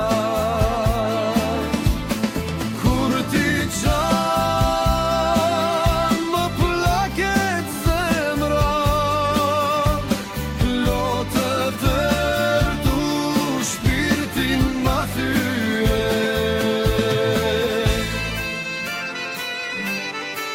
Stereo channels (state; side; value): identical; both; correlation 1.00